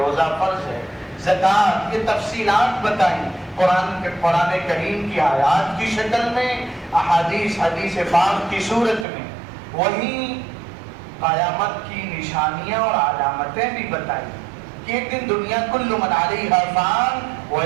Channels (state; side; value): drops out; left; at 9.1 s